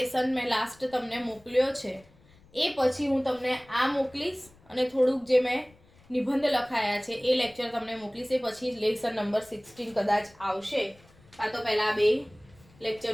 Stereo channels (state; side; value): noise; left; rumble, 28 dB below the sound